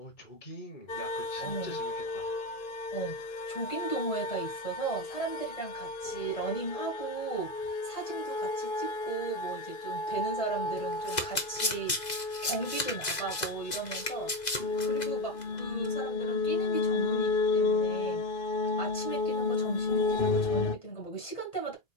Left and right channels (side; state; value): right; late; 2.0 ms